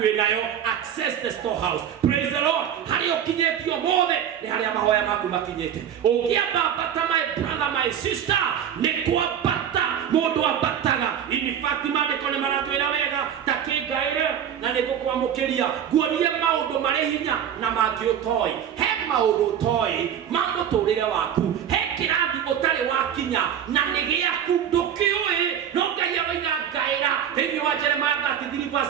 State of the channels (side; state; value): left; quieter; 9.2 dB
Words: wĩnayo, access the storehouse. Praise the Lord. Harĩa ũkinyĩtio mothe nĩ harĩa mahoya maku makinyĩte. Ũngĩamba ambata my brother, my sister, nĩ kwambata mũndũ ambataga. In fact maandĩko nĩ maratwĩra wega ta kĩngaĩre na nĩ ngũkwamũkĩria nguorie maũndũ marĩ hinya na mangĩ ũtoĩ. He maũndũ ũtoĩ ma mũtũrĩre waku, he kĩrathi ũtarĩ wakinya na nĩ gĩaku ndũkĩũĩ, no Ngai aroiga ngaĩra thĩinĩ wa Jeremiah